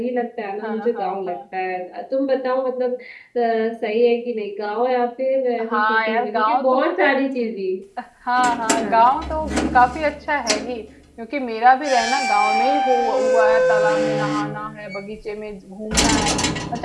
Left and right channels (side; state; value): both; identical; correlation 1.00